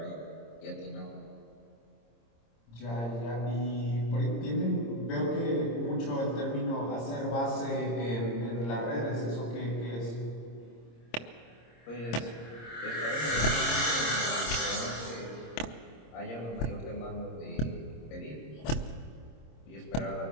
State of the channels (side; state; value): right; late; 26 ms